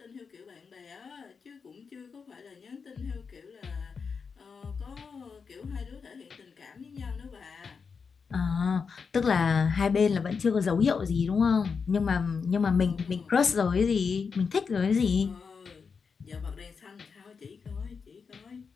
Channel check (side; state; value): right; quieter; 5.6 dB